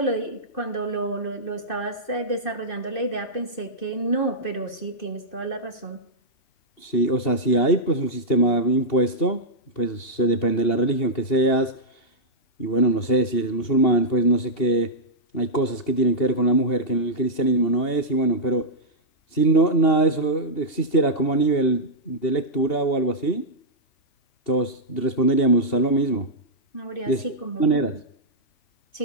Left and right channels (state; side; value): late; right; 2.8 ms